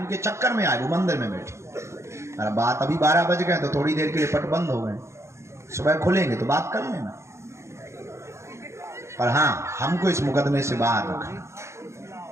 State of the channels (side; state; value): left; late; 0.14 ms